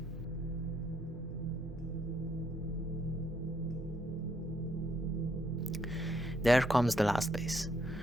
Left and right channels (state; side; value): normal; both; correlation 0.72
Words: There comes the last base.